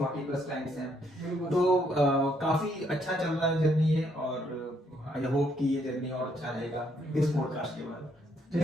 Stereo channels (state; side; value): normal; both; correlation 0.72